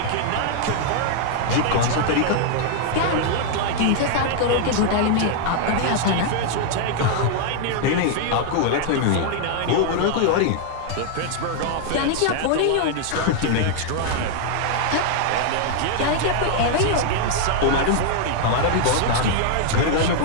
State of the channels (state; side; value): different; both; correlation 0.00